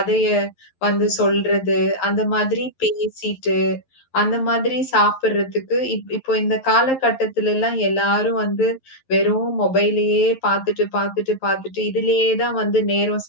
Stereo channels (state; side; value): late; right; 11 ms